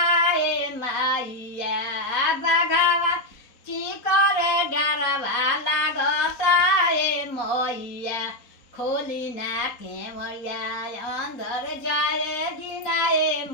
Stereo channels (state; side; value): late; right; 3.8 ms